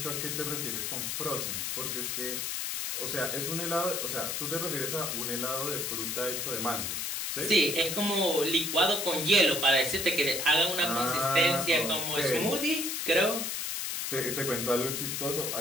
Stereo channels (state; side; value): noise; left; hiss, 2 dB below the sound